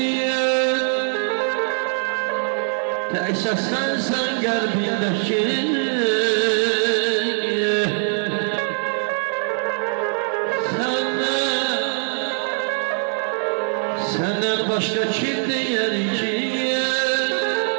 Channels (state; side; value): silent; left; 56 dB below the other